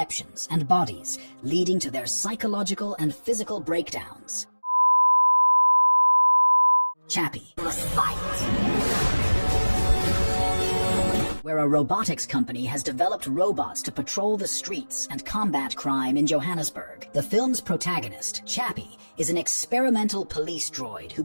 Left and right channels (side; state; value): both; inverted; correlation -1.00